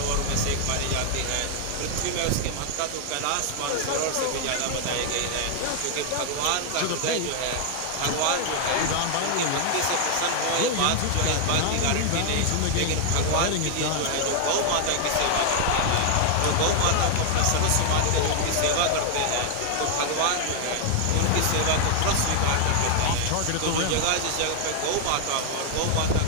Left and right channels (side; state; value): both; different; correlation 0.00